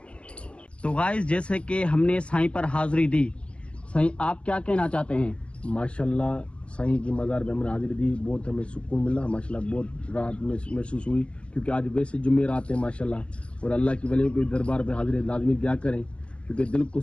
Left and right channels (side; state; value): right; late; 0.060 ms